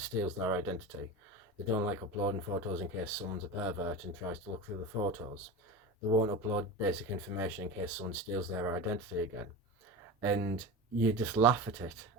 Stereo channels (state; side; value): normal; both; correlation 0.27